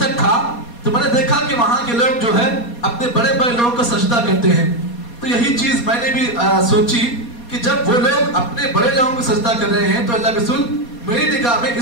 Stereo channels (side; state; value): right; late; 4.2 ms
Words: تھا تو میں نے دیکھا کہ وہاں کے لوگ جو ہے اپنے بڑے بڑے لوگوں کو سجدہ کرتے ہیں. تو یہی چیز میں نے بھی سوچی کہ جب وہ لوگ اپنے بڑے لوگوں کو سجدہ کر رہے ہیں تو اللہ رسول میری نگاہ میں